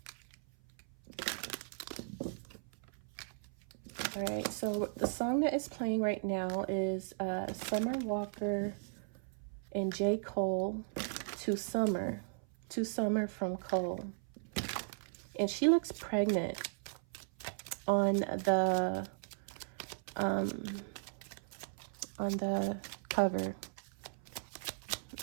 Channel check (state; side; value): silent; left; 53 dB below the other